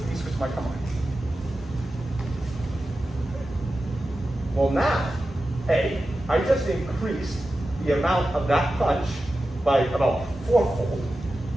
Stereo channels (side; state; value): both; normal; correlation 0.93